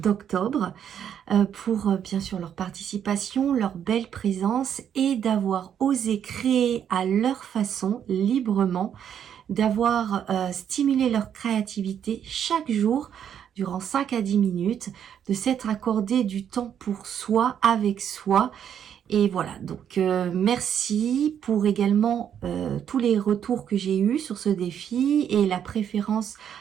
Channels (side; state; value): left; quieter; 8.9 dB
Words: pour bien sûr leur participation, leur belle présence et d'avoir osé créer à leur façon, librement, d'avoir stimulé leur créativité chaque jour durant 5 à 10 minutes, de s'être accordé du temps pour soi, avec soi. Et voilà, donc merci pour également tous les retours que j'ai eus sur ce défi et la préférence